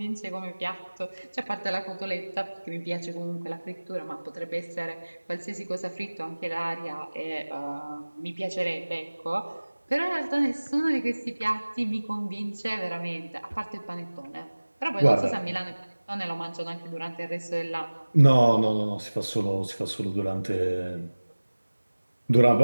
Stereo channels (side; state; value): both; inverted; correlation -1.00